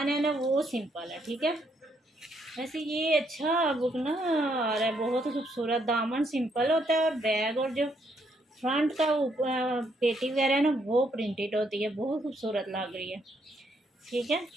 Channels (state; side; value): normal; both; correlation 0.73